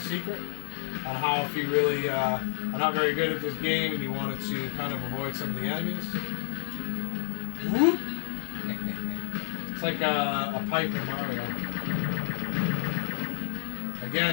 on how if you really are not very good at this game and you wanted to kind of avoid some of the enemies. Whoop! It's like a pipe in Mario.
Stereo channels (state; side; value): silent; right; 58 dB below the other